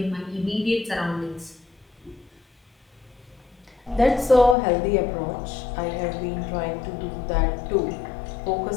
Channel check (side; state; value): right; drops out; at 4.5 s